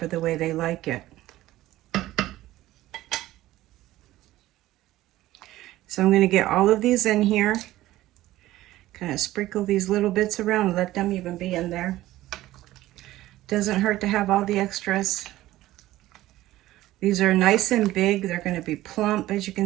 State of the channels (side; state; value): left; quieter; 15.8 dB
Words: the way they like it. So I'm going to get all of these in here. Kind of sprinkle these little bits around and let them even be in there. Doesn't hurt to have all the extras. These are nice and big. They're going to be plump, as you